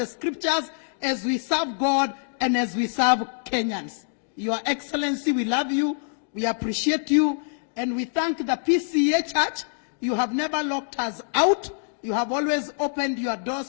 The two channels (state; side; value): silent; right; digital silence